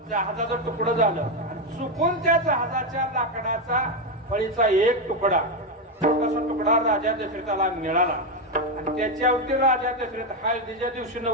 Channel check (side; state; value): both; normal; correlation 0.07